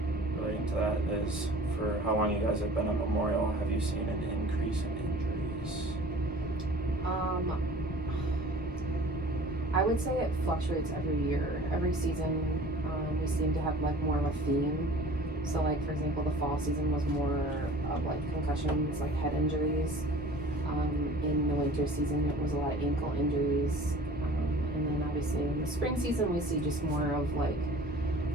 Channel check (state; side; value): normal; both; correlation 0.45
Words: relating to that is, for how long you guys have been at Memorial, have you seen an increase in injuries? I would say it fluctuates every year. Every season, we seem to have like more of a theme. So like, for example, the fall season was more of like concussions, like head injuries. In the winter season, it was a lot of ankle injuries. And then obviously in the spring season, we see just more of like,